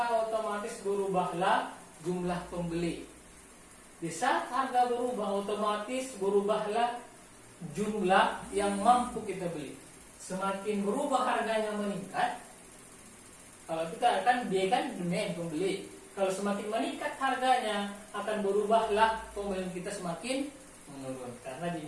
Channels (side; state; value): both; identical; correlation 1.00